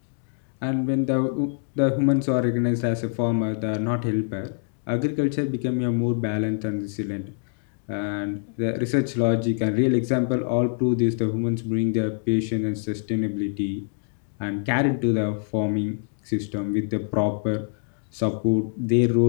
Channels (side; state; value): right; silent; digital silence